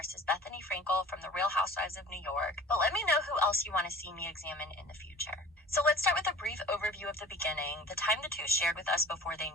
Bethenny from the Real Housewives of New York, but let me know who else you want to see me examine in the future. So let's start with a brief overview of the beginning, the time the two shared with us before they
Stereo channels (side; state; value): both; normal; correlation 0.44